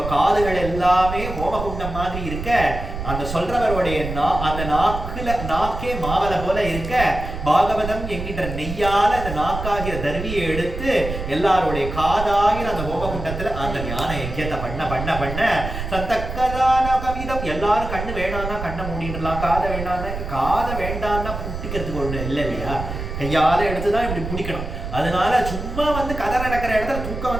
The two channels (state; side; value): noise; right; rumble, 7 dB below the sound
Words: காதுகள் எல்லாமே ஹோமகுண்டம் மாதிரி இருக்க, அந்த சொல்றவருடைய அந்த நாக்கே மாவல போல இருக்க, பாகவதம் என்கின்ற நெய்யால அந்த நாக்காகிற தர்வியை எடுத்து எல்லாருடைய காதாகிற அந்த ஹோமகுண்டத்துல அந்த ஞான யஜ்யத்தை பண்ண சந்தக்கதான கவிதம். எல்லாரும் கண்ணு வேணாம்னா கண்ணை மூடிடலாம், காதை வேண்டாம்னா புட்டிக்கிறதுக்கு ஒண்ணு இல்லை இல்லையா, கையால எடுத்துதான் இப்படி பிடிக்கணும். அதனால சும்மா வந்து கதை நடக்கிற இடத்துல தூக்கம்